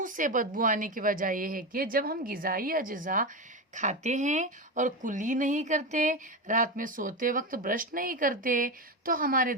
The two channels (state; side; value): normal; both; correlation 0.17